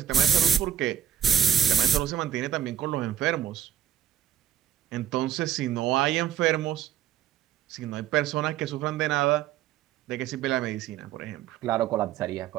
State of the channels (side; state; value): left; quieter; 9.8 dB